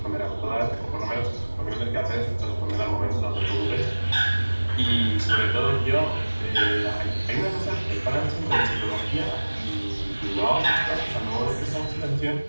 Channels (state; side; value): inverted; both; correlation -1.00